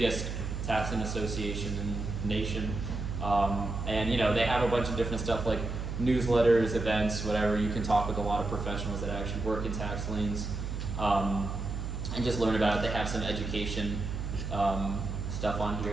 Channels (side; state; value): right; noise; hum, 4 dB below the sound